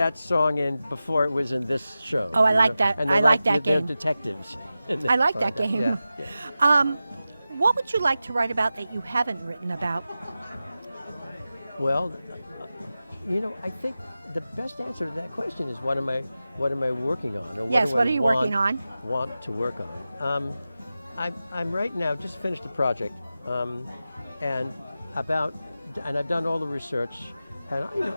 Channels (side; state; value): both; inverted; correlation -0.94